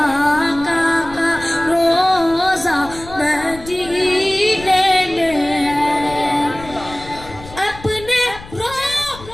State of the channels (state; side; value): noise; left; rumble, 17 dB below the sound